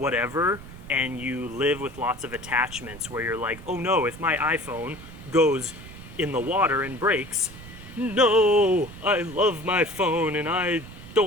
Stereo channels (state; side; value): noise; right; rumble, 16 dB below the sound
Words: and you live with lots of attachments where you're like, oh no, if my iPhone goes in the water and breaks, no, I love my phone and I